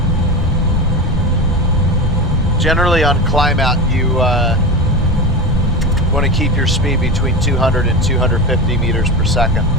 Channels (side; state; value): both; normal; correlation 0.24